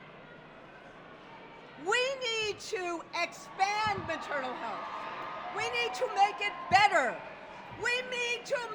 We need to expand maternal health. We need to make it better. We need to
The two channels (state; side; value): identical; both; correlation 1.00